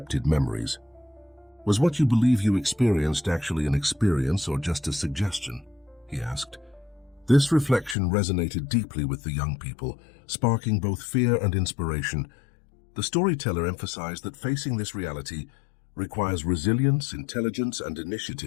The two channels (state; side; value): drops out; right; at 8.0 s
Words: memories. Was what you believe you experienced actually an experience or just a suggestion? He asked. This reflection resonated deeply with the young people, sparking both fear and inspiration. The storyteller emphasized that facing this reality requires resilience, intelligence, and